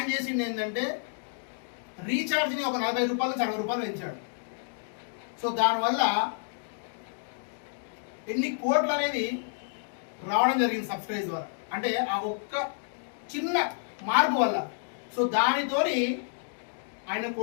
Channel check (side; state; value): right; silent; digital silence